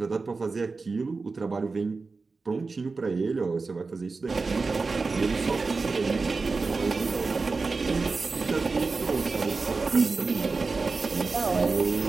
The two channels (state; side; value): quieter; left; 4.1 dB